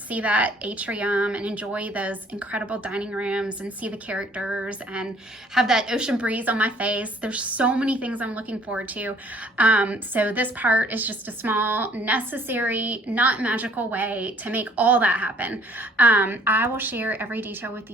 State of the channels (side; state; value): both; normal; correlation 0.59